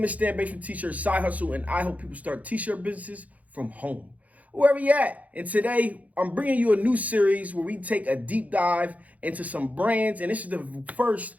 is Stan Bates from T-Shirt Side Hustle, and I help people start T-shirt businesses from home, wherever you at. And today, I'm bringing you a new series where we take a deep dive into some brands, and this is the first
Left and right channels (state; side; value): late; left; 0.072 ms